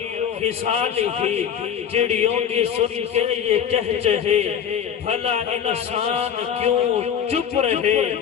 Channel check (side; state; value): right; quieter; 8.5 dB